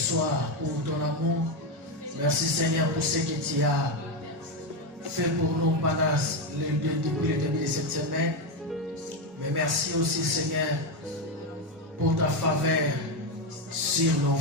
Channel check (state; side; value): normal; both; correlation 0.10